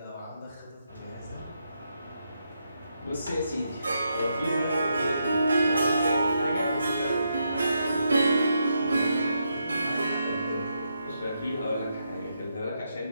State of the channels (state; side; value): inverted; both; correlation -0.81